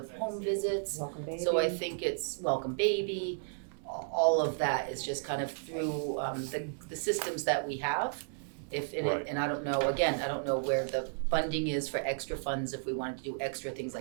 home visits. Welcome baby. So I think it's Welcome Baby, all of that is just kind of through the systems that we have. Right. And I don't know, again, I don't know where the funding is for extra funds if we wanted to do extra things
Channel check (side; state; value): left; silent; 56 dB below the other